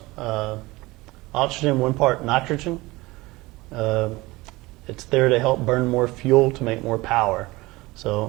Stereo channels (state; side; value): quieter; left; 21.1 dB